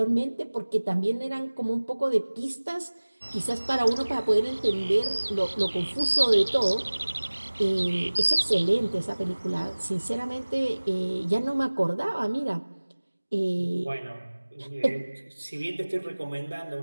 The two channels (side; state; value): both; inverted; correlation -1.00